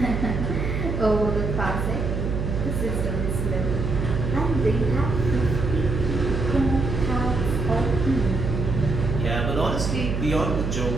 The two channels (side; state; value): right; noise; hum, 2 dB below the sound